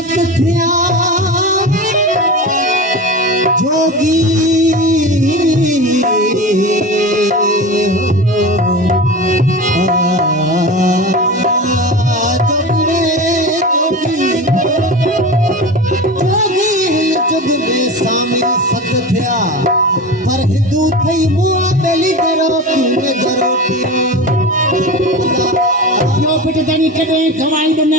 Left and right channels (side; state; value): both; normal; correlation 0.28